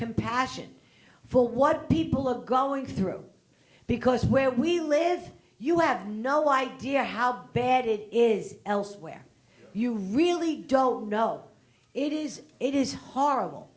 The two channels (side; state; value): both; identical; correlation 1.00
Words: for what people are going through. Because where we live, you have no idea how bad it is elsewhere. You really don't know. It is horrible.